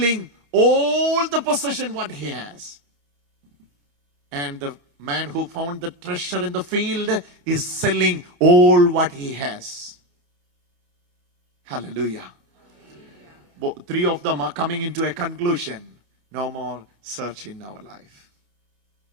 all the possession what he has. And the man who found the treasure in the field is selling all what he has. Hallelujah. Three of them are coming into a conclusion. No more search in our life.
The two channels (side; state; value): left; late; 28 ms